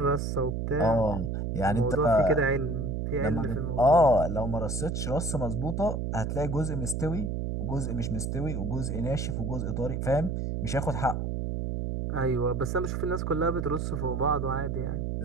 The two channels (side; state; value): right; noise; hum, 2 dB below the sound